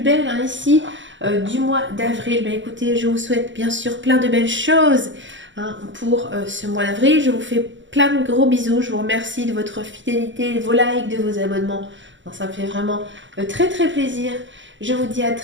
hein, ici du mois d'avril. Ben écoutez, je vous souhaite bien sûr plein de belles choses hein, pour ce mois d'avril. Je vous fais plein de gros bisous. Je vous remercie de votre fidélité, de vos likes, de vos abonnements. Non, ça me fait vraiment très très plaisir. Je vous dis à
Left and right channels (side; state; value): left; late; 0.55 ms